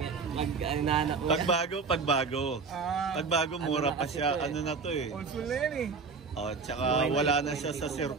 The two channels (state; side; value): quieter; left; 4.9 dB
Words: Mag-inanak ko. Pagbago. Pagbago, mura pa siya. Ano na to eh. Old school na yan eh. Oh, tsaka wala na siya sa